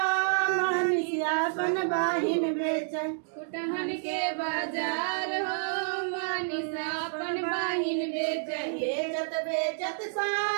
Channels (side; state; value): left; silent; digital silence